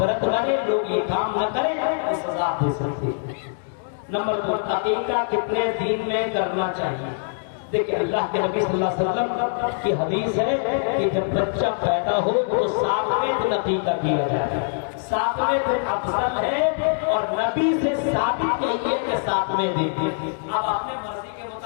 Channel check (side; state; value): right; silent; digital silence